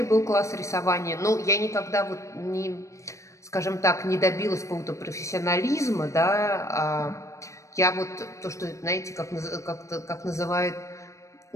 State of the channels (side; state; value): right; late; 0.15 ms